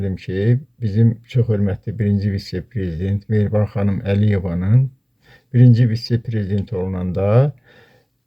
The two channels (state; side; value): identical; both; correlation 1.00